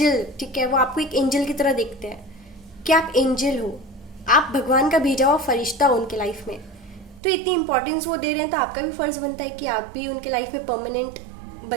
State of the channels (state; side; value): drops out; left; at 7.2 s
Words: ठीक है, वो आपको एक एंजल की तरह देखते हैं कि आप एंजल हो, आप भगवान का भेजा हुआ फरिश्ता हो उनके लाइफ में। तो इतनी इंपॉर्टेंस वो दे रहे हैं, तो आपका भी फर्ज बनता है कि आप भी उनके लाइफ में परमानेंट